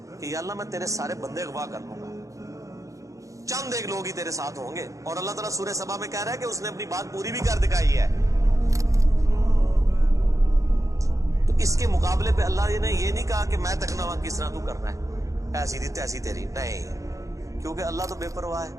कि या अल्लाह मैं तेरे सारे बंदे अगवा कर लूंगा, चंद एक लोग ही तेरे साथ होंगे, और अल्लाह ताला सूरह सबा में कह रहा है कि उसने अपनी बात पूरी भी कर दिखाई है, तो इसके मुकाबले पे अल्लाह ने ये नहीं कहा कि मैं तकना किस तरह तू करना है, ऐसी थी तैसी तेरी, नहीं, क्योंकि अल्लाह तो बेपरवाह है।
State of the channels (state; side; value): late; left; 0.16 ms